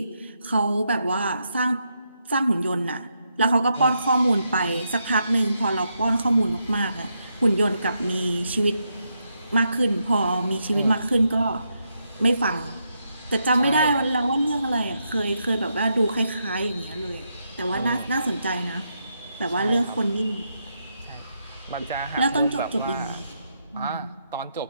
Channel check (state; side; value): inverted; both; correlation -0.81